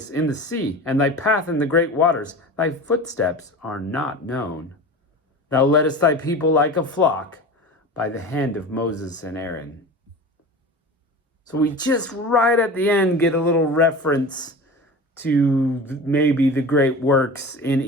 in the sea, and thy path in the great waters. Thy footsteps are not known. Thou leddest thy people like a flock by the hand of Moses and Aaron. So we just right at the end get a little reference to maybe the great works in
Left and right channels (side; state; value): both; normal; correlation 0.33